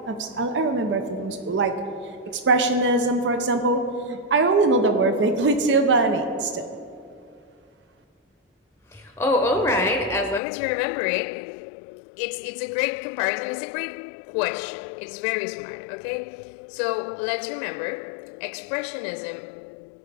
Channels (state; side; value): drops out; right; at 10.4 s